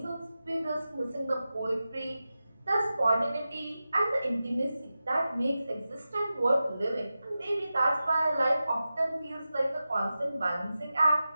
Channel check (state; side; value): inverted; both; correlation -0.93